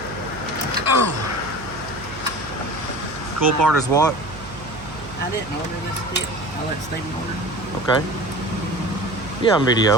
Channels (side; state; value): right; noise; hum, 15 dB below the sound